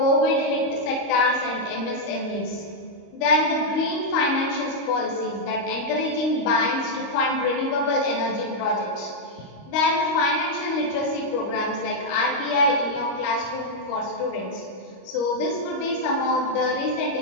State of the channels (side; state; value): right; late; 25 ms